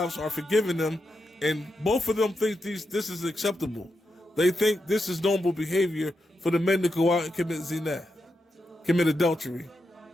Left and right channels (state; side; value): normal; both; correlation 0.86